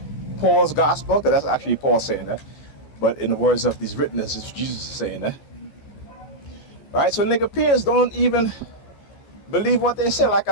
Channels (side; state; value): right; late; 14 ms